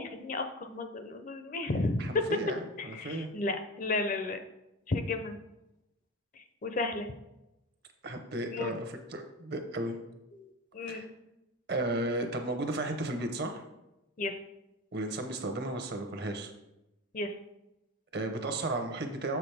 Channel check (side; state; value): both; normal; correlation 0.27